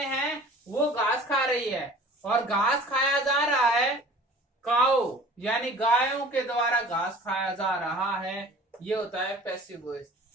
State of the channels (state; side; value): normal; both; correlation 0.45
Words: हैं वो घास खा रही है और घास खाया जा रहा है, काउ यानी गायों के द्वारा घास खाया जा रहा है, ये होता है पैसिव वॉइस।